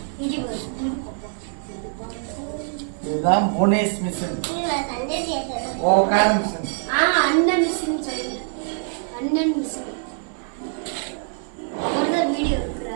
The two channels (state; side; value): silent; left; 58 dB below the other